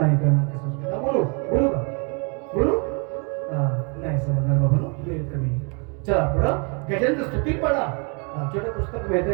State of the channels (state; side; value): quieter; left; 35.6 dB